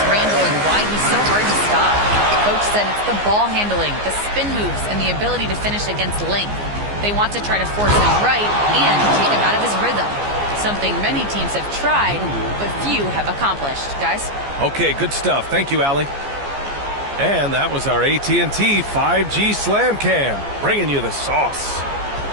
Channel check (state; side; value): late; left; 14 ms